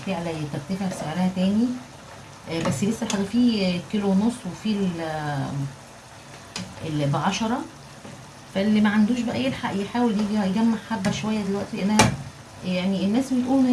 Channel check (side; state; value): both; identical; correlation 1.00